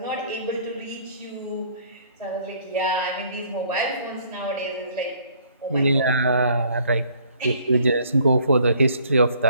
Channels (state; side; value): inverted; both; correlation -0.60